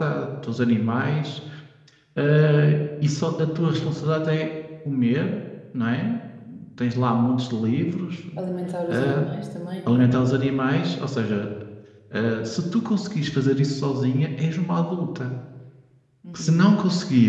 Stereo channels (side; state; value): both; identical; correlation 1.00